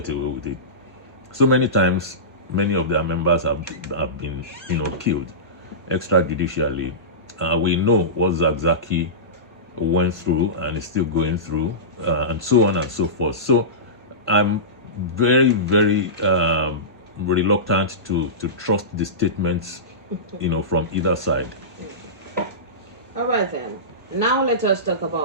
away with it. So many times, many of their members have been, killed extrajudicially. We know what Zakzaki went through and is still going through, and so on and so forth. So I'm very, very reluctant to trust the statements, from either side. All right then. Now let us talk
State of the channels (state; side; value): normal; both; correlation -0.20